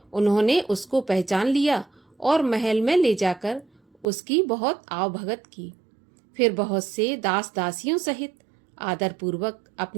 उन्होंने उसको पहचान लिया और महल में ले जाकर उसकी बहुत आवभगत की। फिर बहुत से दास दासियों सहित आदरपूर्वक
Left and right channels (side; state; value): left; drops out; at 4.0 s